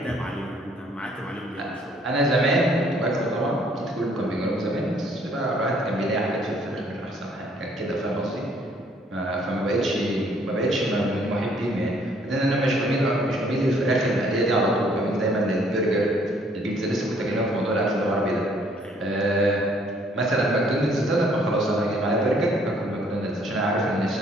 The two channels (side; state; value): both; normal; correlation 0.63